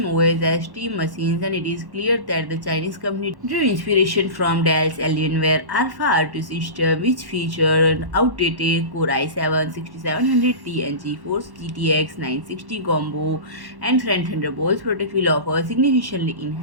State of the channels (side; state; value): left; late; 1.1 ms